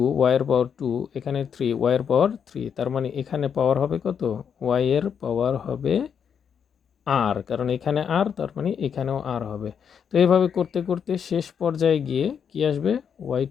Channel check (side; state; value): right; quieter; 7.4 dB